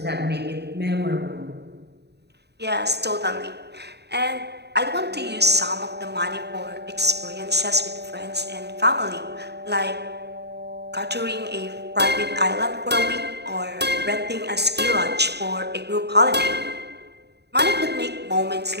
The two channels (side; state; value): left; late; 0.49 ms